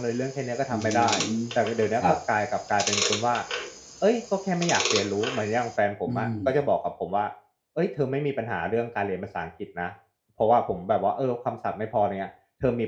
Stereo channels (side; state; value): both; identical; correlation 1.00